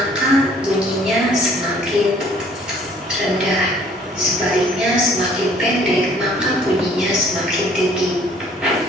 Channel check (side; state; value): both; normal; correlation 0.57